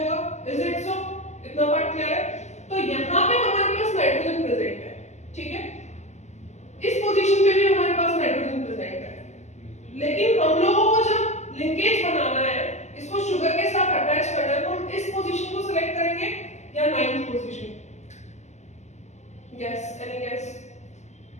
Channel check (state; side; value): late; right; 0.33 ms